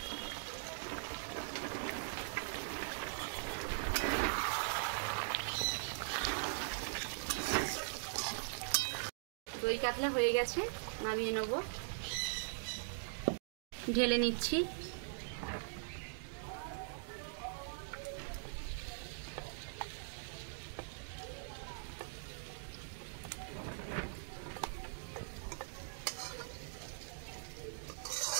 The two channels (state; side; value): silent; left; digital silence